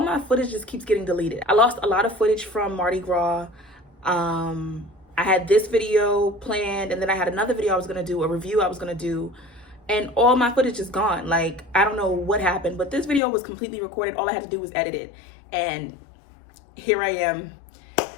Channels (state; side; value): drops out; right; at 13.2 s